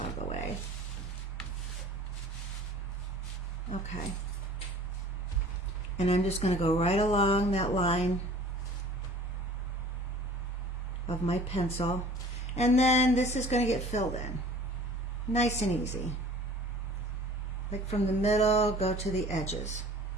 of the way. Okay. And I'm just going to go right along that line of my pencil. And then this is going to get filled in. Nice and easy. Like from the middle, go to the edges.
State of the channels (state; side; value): normal; both; correlation 0.47